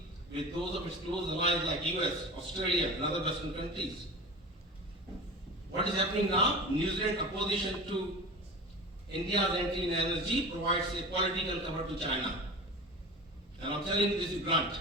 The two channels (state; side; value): normal; both; correlation 0.32